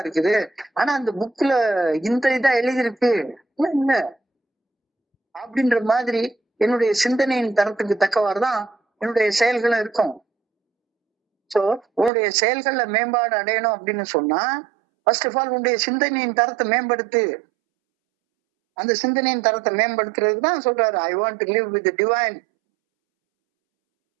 இருக்குது, ஆனா அந்த புக்ல இந்த இதா எழுதியிருக்கு இல்ல அப்படின்ற மாதிரி என்னுடைய சிந்தனையின் தரத்துக்கு தக்கவாறுதான் என்னுடைய செயல்களும் இருக்கும். சோ உன்னுடைய செயல்கள்ல மேம்பாடு அடையணும் அப்படின்னு சொன்னா ஃபர்ஸ்ட் ஆஃப் ஆல் உன்னுடைய சிந்தனையின் தரத்தை மேம்படுத்து. அந்த சிந்தனையின் தரத்தை மேம்படுத்துறதுக்கு தான் சொல்றாரு, I want to live with divine.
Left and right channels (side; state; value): left; drops out; at 12.1 s